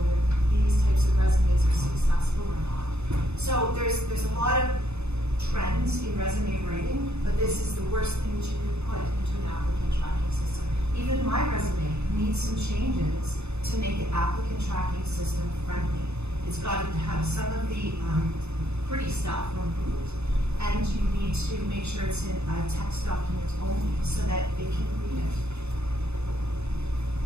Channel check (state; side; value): late; left; 0.81 ms